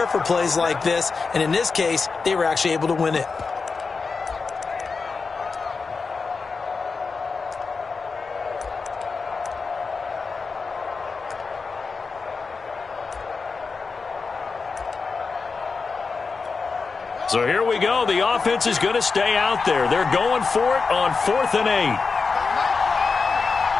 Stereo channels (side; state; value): right; quieter; 4.7 dB